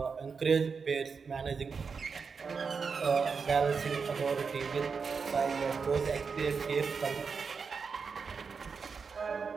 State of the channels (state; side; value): quieter; left; 5.4 dB